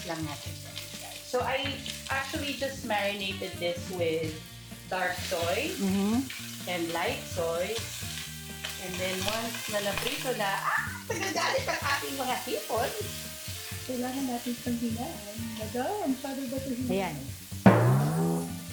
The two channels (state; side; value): identical; both; correlation 1.00